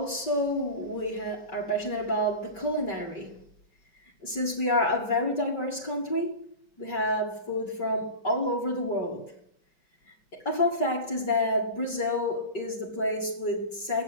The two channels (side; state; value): right; late; 5.2 ms